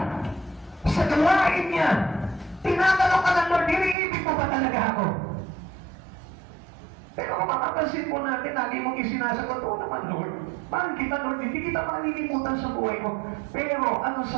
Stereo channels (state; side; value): drops out; left; at 4.0 s